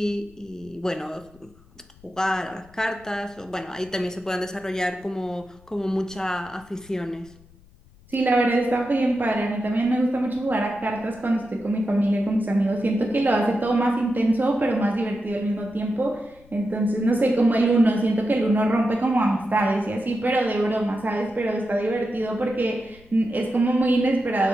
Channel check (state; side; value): noise; left; rumble, 26 dB below the sound